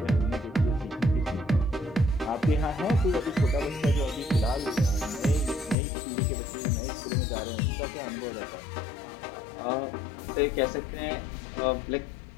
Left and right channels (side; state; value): right; drops out; at 5.8 s